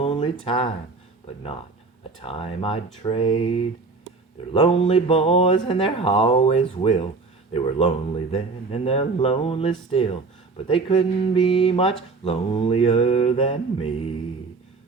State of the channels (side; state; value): left; quieter; 4.1 dB